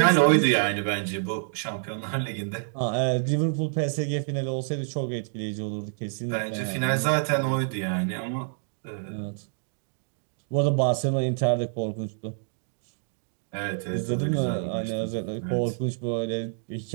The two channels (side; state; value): left; silent; digital silence